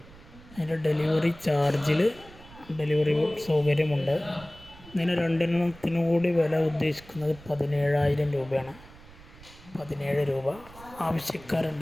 അതിൻ്റെ ഡെലിവറി ചാർജിൽ ഡെലിവറി സൗകര്യമുണ്ട്. ഇതിന് 2 കൂടി വില ഉദ്ദേശിക്കുന്നത് 17,000 രൂപയാണ്. 17 രൂപ.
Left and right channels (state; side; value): noise; right; rumble, 21 dB below the sound